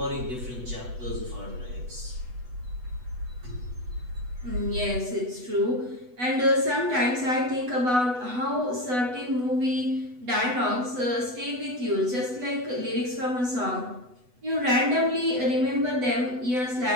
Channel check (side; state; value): left; late; 8.1 ms